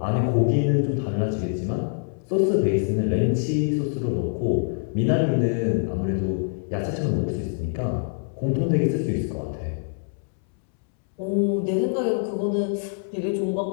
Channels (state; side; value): silent; right; 62 dB below the other